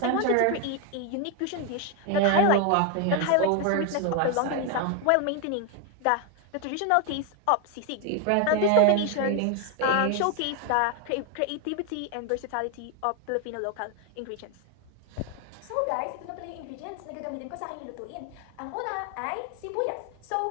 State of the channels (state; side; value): different; both; correlation 0.01